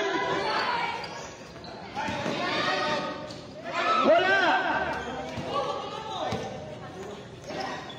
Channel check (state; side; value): identical; both; correlation 1.00